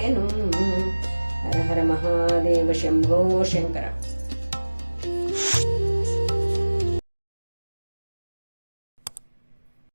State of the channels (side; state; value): both; inverted; correlation -1.00